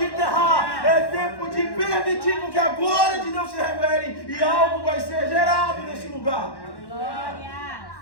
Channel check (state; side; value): late; right; 1.1 ms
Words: enterrar, é tempo de permitir que a glória de Deus se revele e algo vai ser gerado nesse lugar. Glórias.